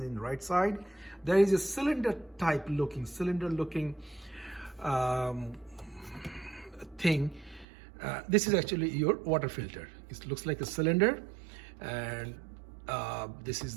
in right side. There is a cylinder looking thing. This is actually your water filter. It looks like a cylinder, and this is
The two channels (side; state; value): left; drops out; at 7.7 s